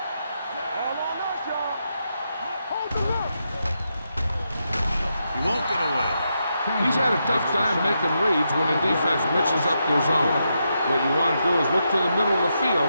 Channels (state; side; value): inverted; both; correlation -0.84